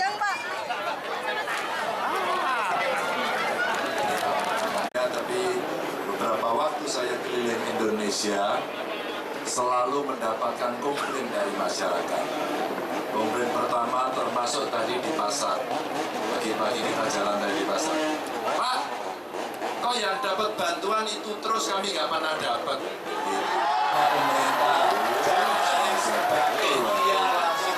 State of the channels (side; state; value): both; identical; correlation 1.00